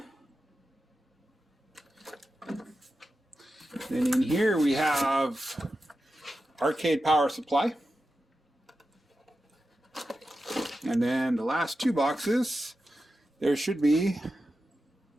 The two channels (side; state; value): both; normal; correlation 0.91